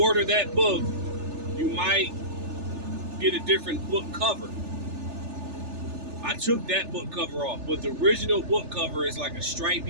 order that book, you might get a different book cover. I took that book cover off, but the original book cover is like a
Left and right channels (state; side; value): late; left; 3.4 ms